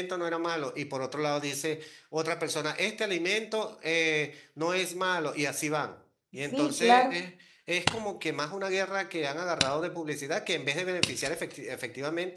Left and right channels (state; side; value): identical; both; correlation 1.00